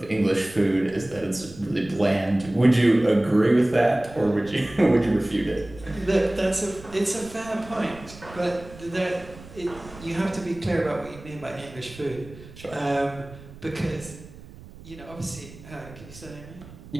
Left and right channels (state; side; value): noise; right; rumble, 18 dB below the sound